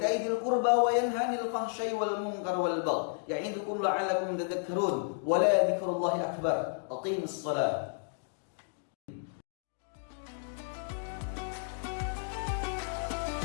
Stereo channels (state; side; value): silent; right; digital silence